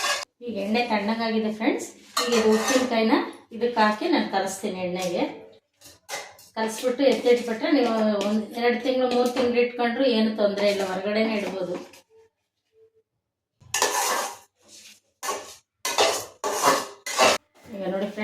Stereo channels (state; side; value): identical; both; correlation 1.00